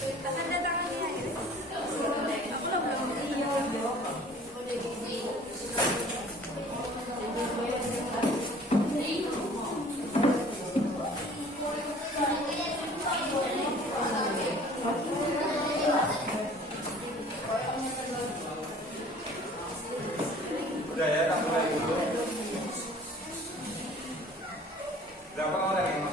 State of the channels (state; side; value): normal; both; correlation 0.49